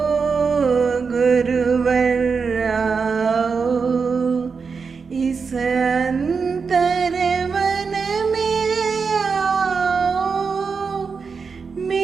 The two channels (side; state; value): left; quieter; 5.3 dB